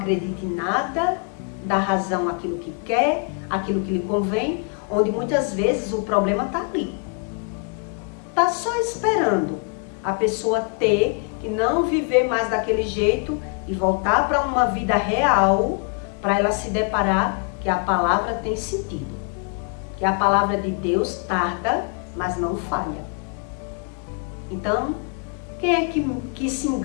em nada, dá razão àquilo que quer, àquilo que lhe convém, onde muitas vezes o problema está ali. Está só esperando a pessoa ter que não viver mais daquele jeito e voltar para uma vida real, para ela se deparar que a palavra tem sentido, que a palavra de Deus tarda, mas não falha. Então, quem é que se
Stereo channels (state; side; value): quieter; right; 38.7 dB